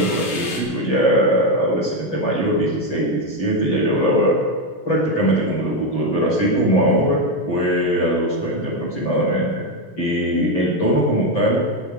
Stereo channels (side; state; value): right; late; 17 ms